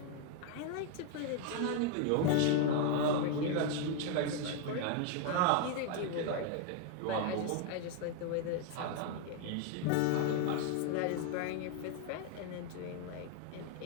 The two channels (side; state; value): both; different; correlation 0.01